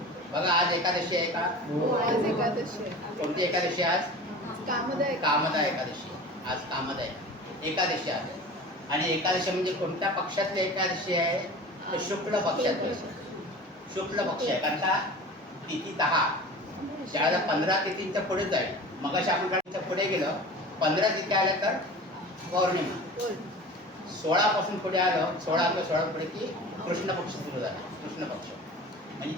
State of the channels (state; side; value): normal; both; correlation 0.37